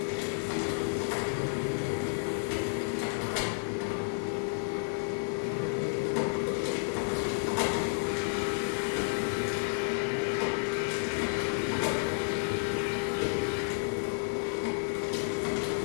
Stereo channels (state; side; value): silent; right; digital silence